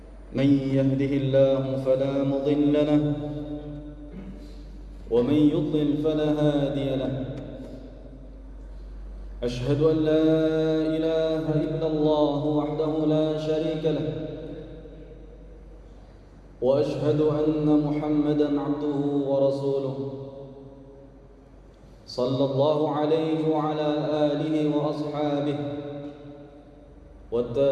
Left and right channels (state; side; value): identical; both; correlation 1.00